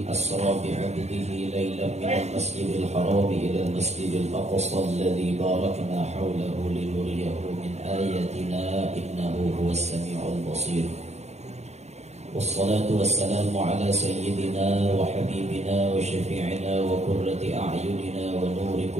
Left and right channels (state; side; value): late; left; 0.32 ms